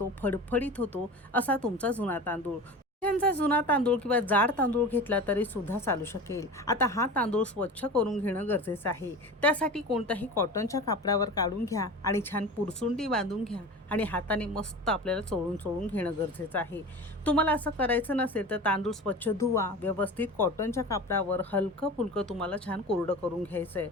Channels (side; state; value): both; normal; correlation 0.33